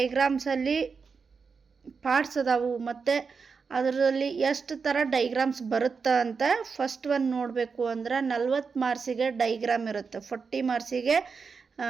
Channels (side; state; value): left; quieter; 5.3 dB